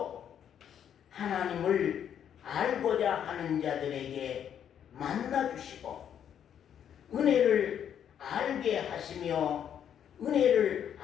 하나님을 알고자 하는 자들에게 만나주시고 은혜를 알게 하시며 은혜를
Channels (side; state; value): right; quieter; 9.1 dB